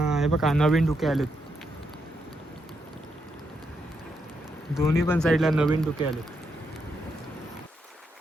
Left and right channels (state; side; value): normal; both; correlation 0.81